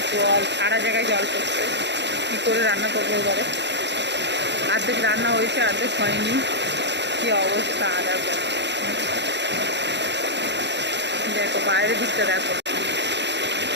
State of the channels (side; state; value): left; late; 0.51 ms